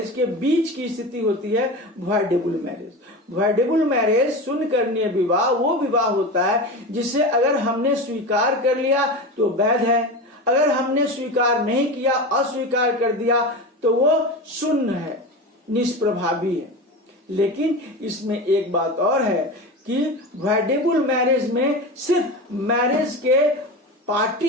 के बीच की स्थिति होती है वाइडेबल मैरिज। वाइडेबल मैरिज शून्य करणीय विवाह वो विवाह होता है जिसे अगर हमने स्वीकार कर लिया तो वैध है, अगर हमने स्वीकार नहीं किया, अस्वीकार कर दिया, तो वो शून्य है, निष्प्रभावी है। लेकिन इसमें एक बात और है कि वाइडेबल मैरिज में सिर्फ मैरिज के पार्टी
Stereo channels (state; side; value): normal; both; correlation 0.26